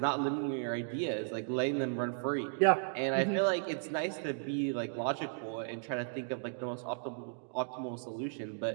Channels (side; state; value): left; silent; digital silence